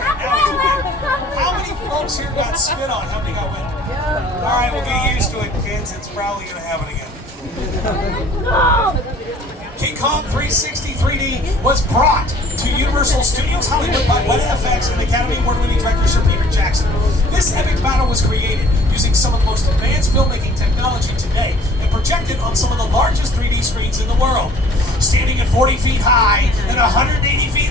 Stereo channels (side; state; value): both; normal; correlation 0.53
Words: Now he's awake. How many folks here got spit on? How many got wet? All right, we'll get used to it, kids. It's probably going to happen again. King Kong 360 3D was brought to Universal Studios Hollywood by Weta FX and Academy Award-winning director Sir Peter Jackson. This epic battle was created using some of the most advanced filmmaking technology today and projected on some of the largest 3D screens in the world. Standing at 40 feet high and 180